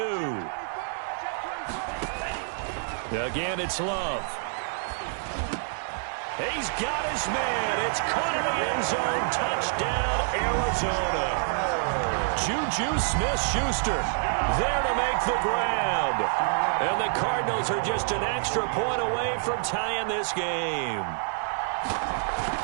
Again, it's Love. He's got his man. It's caught in the end zone. Touchdown, Arizona. Juju Smith-Schuster there to make the grab. And the Cardinals are just an extra point away from tying this game.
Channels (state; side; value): silent; left; digital silence